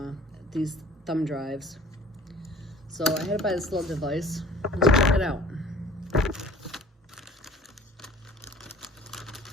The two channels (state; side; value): normal; both; correlation 0.48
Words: these thumb drives. So I had to buy this little device. Let's check it out.